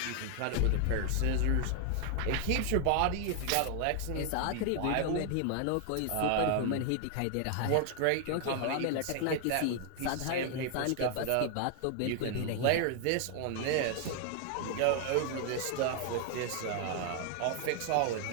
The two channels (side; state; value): both; different; correlation 0.00